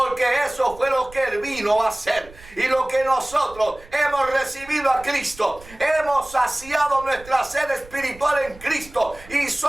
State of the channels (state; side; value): noise; right; rumble, 20 dB below the sound